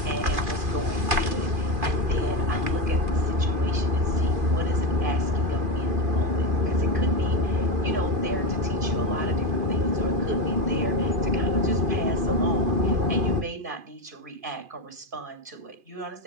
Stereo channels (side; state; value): left; late; 2.5 ms